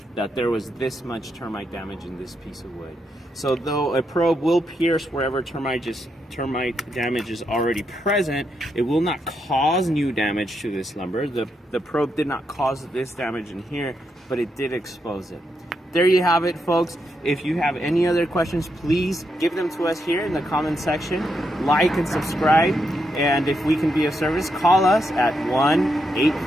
that there was this much termite damage in this piece of wood. So though a probe will pierce wherever termite damage is already present, it will not cause new damage to this lumber. The probe did not cause this damage in here, but it did expose it. There you have it, folks. If you have any other questions, please give them to us here in the comment section. Like and subscribe. And if we can be of service, call us at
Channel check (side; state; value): both; normal; correlation 0.81